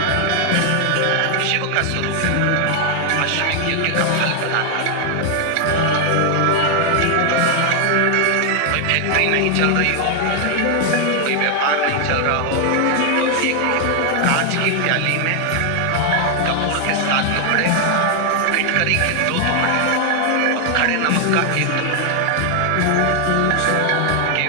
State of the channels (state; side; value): different; both; correlation 0.00